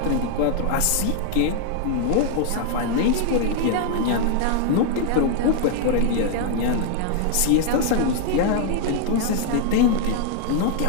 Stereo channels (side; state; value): both; different; correlation 0.00